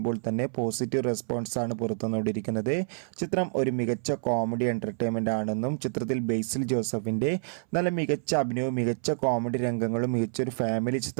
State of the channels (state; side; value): silent; left; 59 dB below the other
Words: തന്നെ പോസിറ്റീവ് റെസ്പോൺസ് ആണ് പുറത്തുവന്നുകൊണ്ടിരിക്കുന്നത്. ചിത്രം ഒരു മികച്ച കോമഡി എൻ്റർടൈൻമെൻ്റ് ആണെന്നും ചിത്രത്തിൽ ബേസിൽ ജോസഫിൻ്റെ നല്ല മികച്ച അഭിനയവും മികച്ച കോമഡി രംഗങ്ങളും മികച്ചൊരു ഫാമിലി